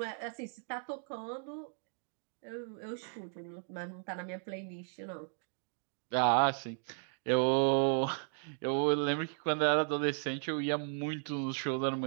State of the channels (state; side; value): silent; left; 54 dB below the other